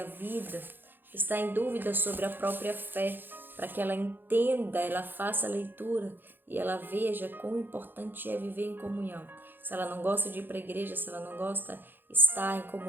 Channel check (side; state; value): left; late; 0.095 ms